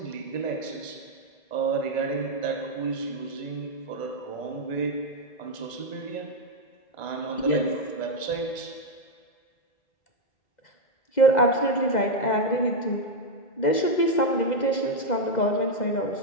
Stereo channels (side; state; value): right; late; 2.0 ms